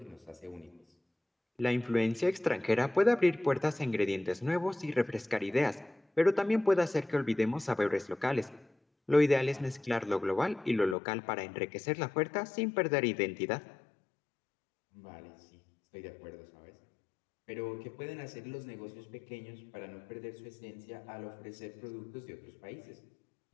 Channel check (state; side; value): drops out; right; at 11.0 s